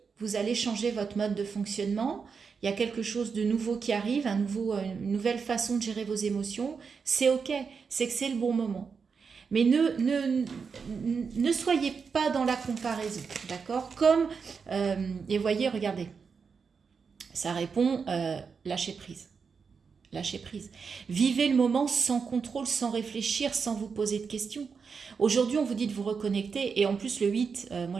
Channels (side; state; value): left; quieter; 5.6 dB